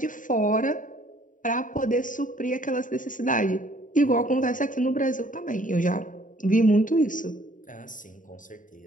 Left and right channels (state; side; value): late; right; 0.38 ms